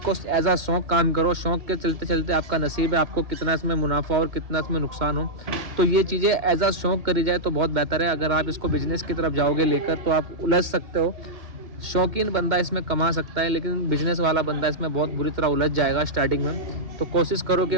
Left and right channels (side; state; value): left; late; 2.1 ms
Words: एज अ शौक काम करो। शौक के चलते चलते आपका नसीब है, आपको कितना इसमें मुनाफा और कितना इसमें नुकसान हो, तो ये चीज़ें एज अ शौक करी जाए तो बहुत बेहतर है। अगर आप इसको बिजनेस की तरफ जाओगे लेकर तो आप उलझ सकते हो। शौकीन बंदा इसमें कमा सकता है, लेकिन बिजनेस वाला बंदा इसमें बहुत बुरी तरह उलझ जाएगा स्टार्टिंग में। तो कोशिश करो कि